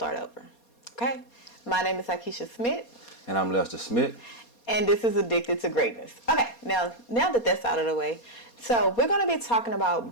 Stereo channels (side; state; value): right; late; 4.2 ms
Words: over. Okay, my name is Akeisha Smith. And I'm Lester Smith. And this is Addicted to Greatness. Okay, now that that's out of the way, so we're going to be talking